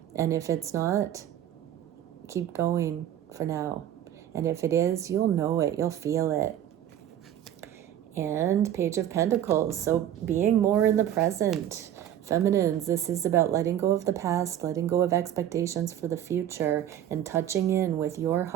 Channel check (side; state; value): left; quieter; 11.0 dB